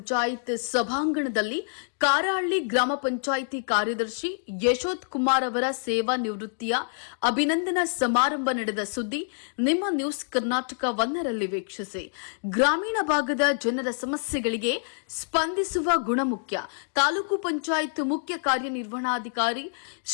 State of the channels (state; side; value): silent; right; digital silence